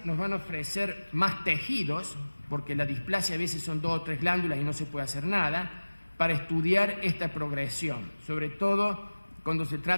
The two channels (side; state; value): both; inverted; correlation -1.00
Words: nos van a ofrecer más tejidos, porque la displasia a veces son 2 o 3 glándulas y no se puede hacer nada, para estudiar esta progresión, sobre todo cuando se